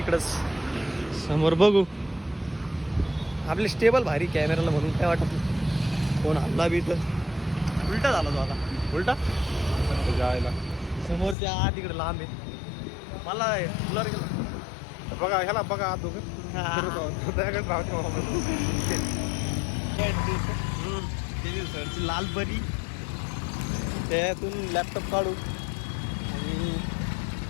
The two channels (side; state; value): right; drops out; at 11.4 s